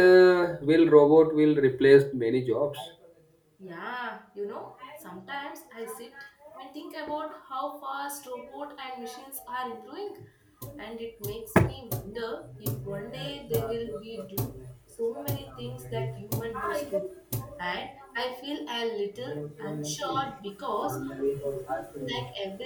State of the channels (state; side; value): identical; both; correlation 1.00